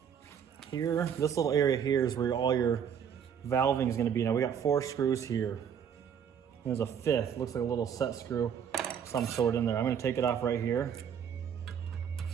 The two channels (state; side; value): quieter; left; 8.0 dB